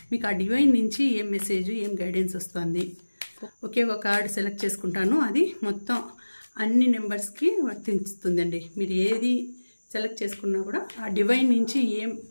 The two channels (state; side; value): inverted; both; correlation -1.00